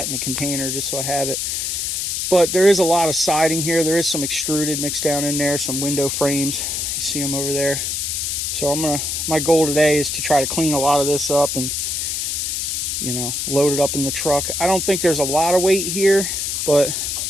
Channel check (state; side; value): noise; left; hiss, 1 dB below the sound